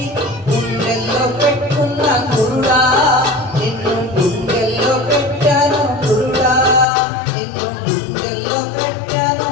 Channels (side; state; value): right; drops out; at 6.9 s